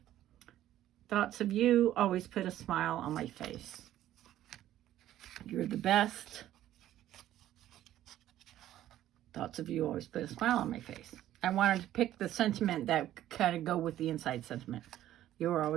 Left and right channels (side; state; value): left; quieter; 13.0 dB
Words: thoughts of you always put a smile on my face. You're the best. Thoughts of you always put a smile on my face. I wanted to pick the sentiment that kind of go with the inside sentiment. You're